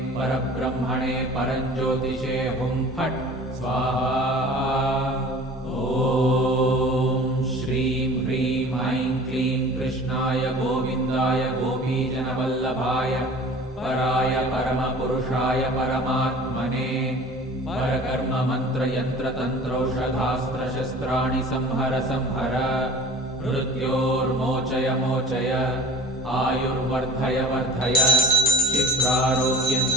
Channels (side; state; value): both; normal; correlation 0.43